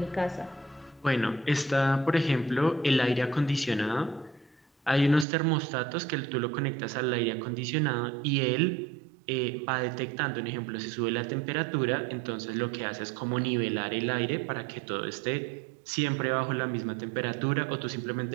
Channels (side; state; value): left; drops out; at 5.2 s